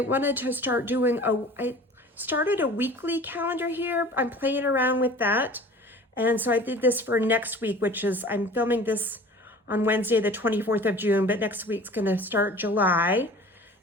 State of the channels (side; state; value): both; normal; correlation 0.43